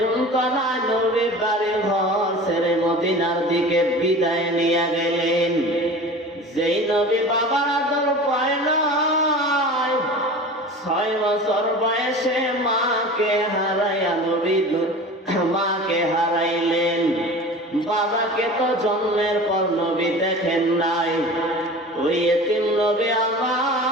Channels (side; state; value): both; normal; correlation 0.37